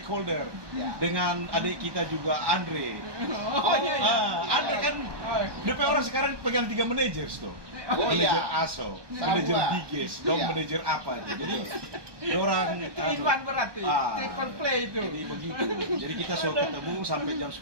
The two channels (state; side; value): late; left; 1.2 ms